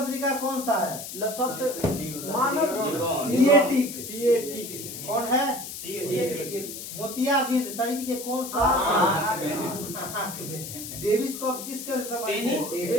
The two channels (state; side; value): noise; left; hiss, 9 dB below the sound